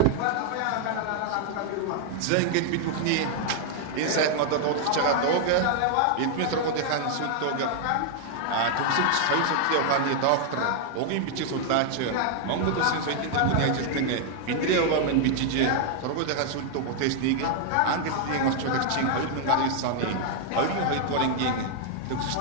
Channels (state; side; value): different; both; correlation 0.00